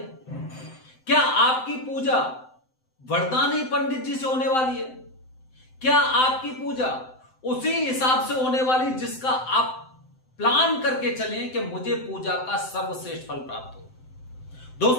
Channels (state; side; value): late; right; 7.8 ms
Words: क्या आपकी पूजा वरदानी पंडित जी से होने वाली है? क्या आपकी पूजा उसी हिसाब से होने वाली जिसका आप प्लान करके चलें कि मुझे पूजा का सर्वश्रेष्ठ फल प्राप्त हो?